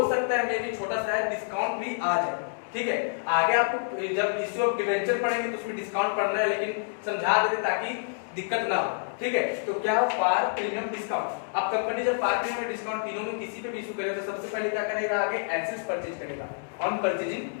सकता है मे भी छोटा सा डिस्काउंट भी आ जाए, ठीक है। आगे आपको जब इशू ऑफ डिवेंचर पढ़ेंगे तो उसमें डिस्काउंट पढ़ना है, लेकिन समझा देते ताकि दिक्कत ना हो, ठीक है। तो क्या हो? Par premium discount. अब कंपनी जब पार प्रीमियम डिस्काउंट तीनों में किसी पे भी इशू करेगा तो सबसे पहले क्या करेगा? आगे एसेट्स परचेज करेगा ऑन परचेजिंग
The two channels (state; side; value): silent; right; digital silence